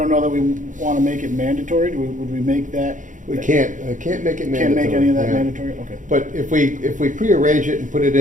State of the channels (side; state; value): left; late; 0.37 ms